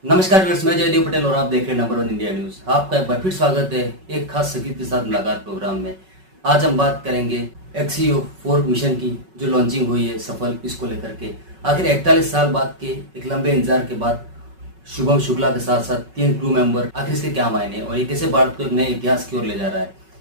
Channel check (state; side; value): late; left; 5.3 ms